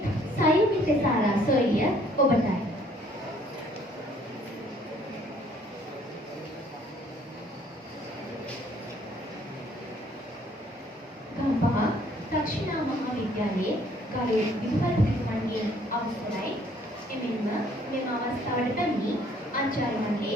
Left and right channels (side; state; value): both; normal; correlation 0.61